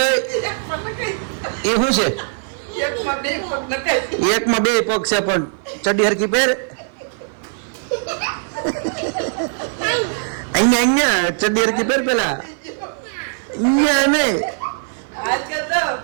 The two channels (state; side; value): silent; left; 55 dB below the other